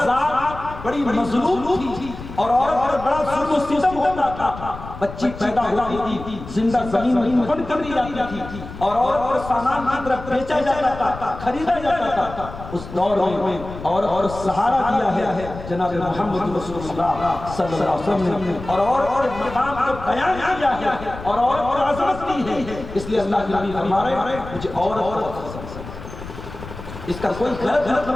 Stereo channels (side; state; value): left; noise; rumble, 12 dB below the sound